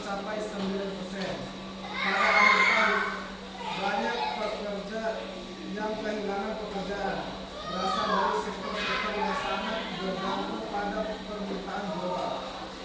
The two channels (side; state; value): both; identical; correlation 1.00